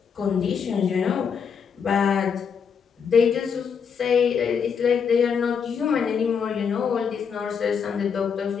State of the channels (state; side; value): quieter; right; 6.7 dB